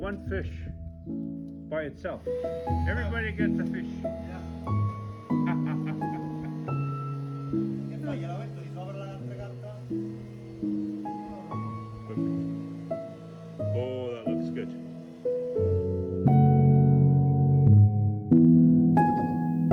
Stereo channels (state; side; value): identical; both; correlation 1.00